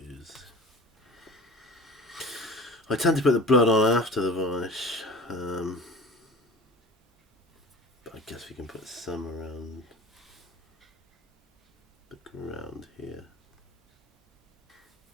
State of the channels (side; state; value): both; normal; correlation 0.38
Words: I tend to put the blood on after the varnish. But I guess we can put some around the ground here.